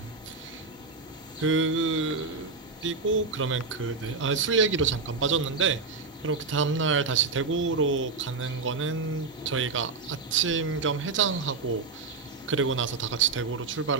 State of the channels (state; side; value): quieter; left; 4.3 dB